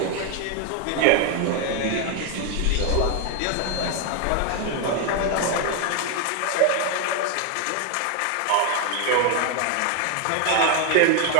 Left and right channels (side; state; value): both; different; correlation 0.01